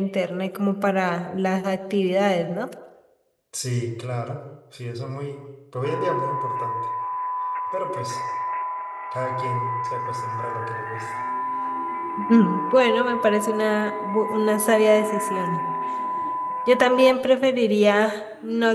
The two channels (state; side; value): identical; both; correlation 1.00